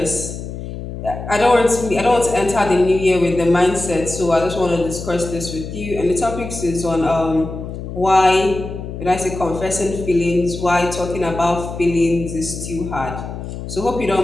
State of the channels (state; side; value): noise; left; hum, 9 dB below the sound